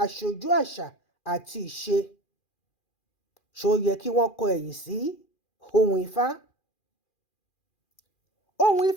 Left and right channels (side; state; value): right; late; 2.4 ms